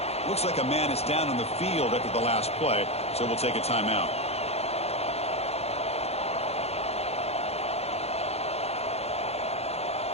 Looks like a man is down on the field after the last play, so we'll take a timeout.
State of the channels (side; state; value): right; late; 0.30 ms